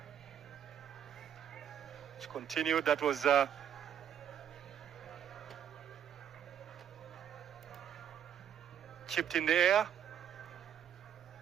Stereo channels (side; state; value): left; quieter; 9.1 dB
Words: which continued. That was chipped in the air.